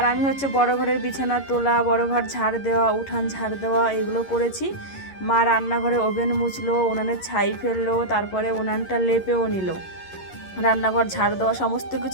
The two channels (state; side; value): late; right; 11 ms